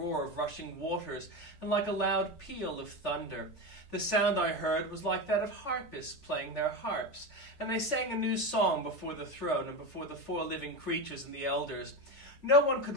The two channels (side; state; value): right; late; 3.6 ms